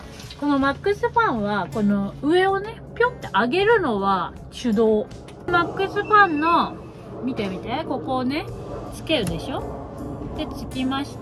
このマックスファンはこの上をねピョンって上げるのは手動。マックスファンの見てここをねつけるでしょ。でつきまし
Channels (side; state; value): both; identical; correlation 1.00